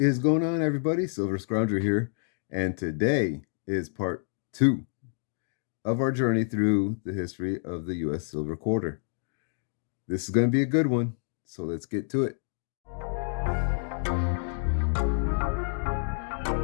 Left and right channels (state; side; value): silent; right; digital silence